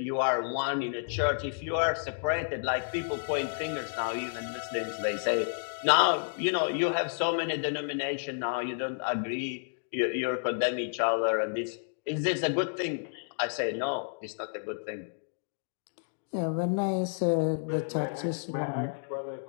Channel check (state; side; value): silent; right; digital silence